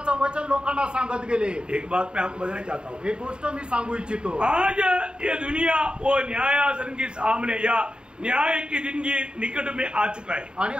वचन लोकांना सांगत गेले। एक बात मैं आपको बताना चाहता हूँ, एक गोष्ट मी सांगू इच्छितो। आज ये दुनिया वो न्यायासन के सामने या न्याय के दिन की निकट में आ चुका है। आणि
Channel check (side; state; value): left; late; 0.050 ms